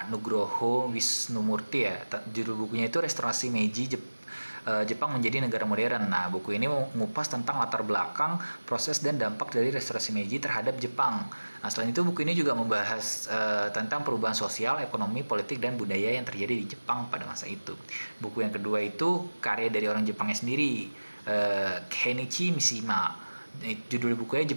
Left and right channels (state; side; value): inverted; both; correlation -1.00